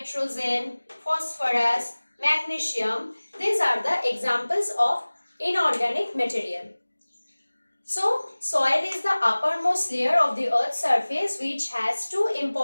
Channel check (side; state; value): both; inverted; correlation -1.00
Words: phosphorus, magnesium. These are the examples of inorganic material. So, soil is the uppermost layer of the earth's surface which has two